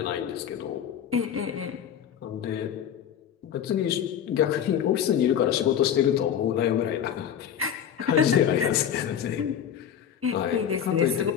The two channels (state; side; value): quieter; right; 9.0 dB